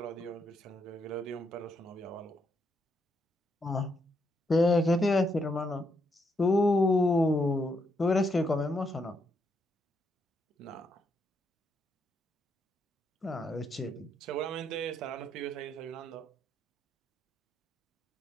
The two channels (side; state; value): both; normal; correlation 0.78